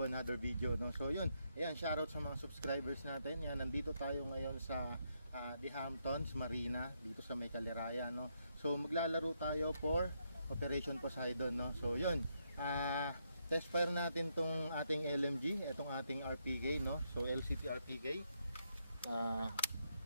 another video, no? So yun, ayan, shoutout sa mga subscribers natin. Yan, nandito tayo ngayon sa The Hamptons Marina, dito sa may Caliraya, no? So maglalaro tayo for Operation Poseidon, no? So yun, test fire natin tong ating LMG, itong ating RPK, no? So LCT RPK.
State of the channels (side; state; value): both; inverted; correlation -0.78